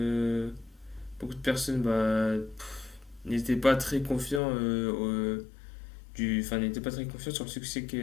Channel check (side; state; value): right; drops out; at 4.4 s